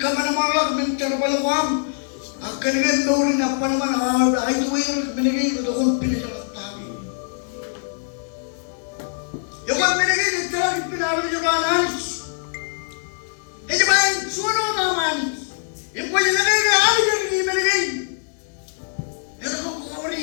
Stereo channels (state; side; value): silent; right; digital silence